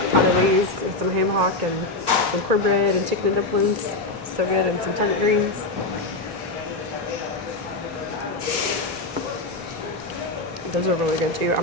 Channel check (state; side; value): quieter; right; 3.1 dB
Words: pot of these with some ham hock and some cornbread and chicken and dumplings. So good, and some turnip greens. Those are really good too. I'm